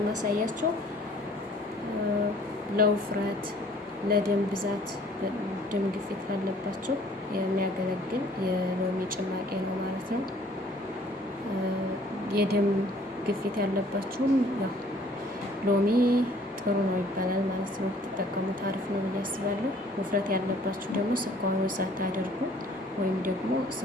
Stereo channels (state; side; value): normal; both; correlation 0.56